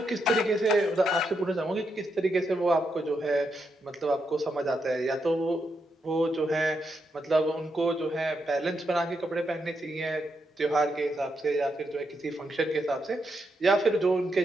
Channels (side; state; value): both; normal; correlation 0.82